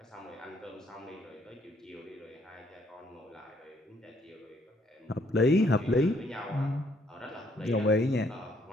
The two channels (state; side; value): normal; both; correlation 0.68